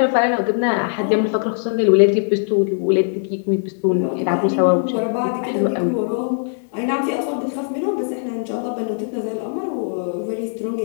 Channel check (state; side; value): silent; right; 59 dB below the other